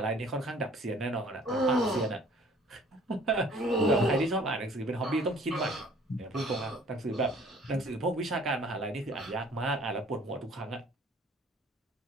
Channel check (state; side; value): normal; both; correlation 0.54